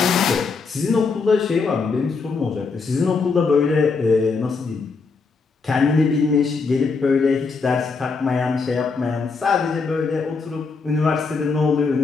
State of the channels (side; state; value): right; quieter; 4.6 dB